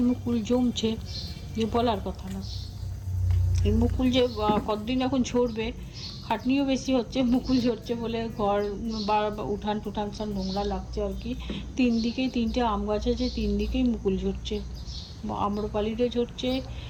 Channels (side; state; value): both; identical; correlation 1.00